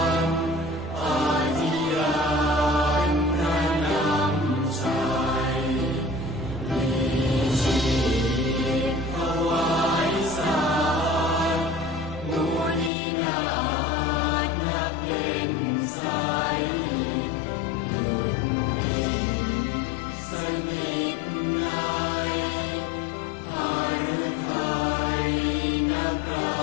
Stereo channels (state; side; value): drops out; right; at 12.9 s